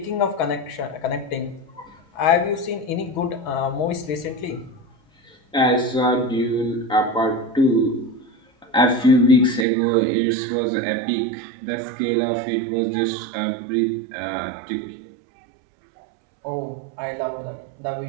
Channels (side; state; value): left; drops out; at 9.7 s